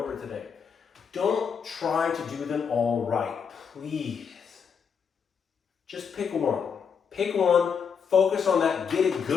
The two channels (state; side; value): quieter; right; 6.6 dB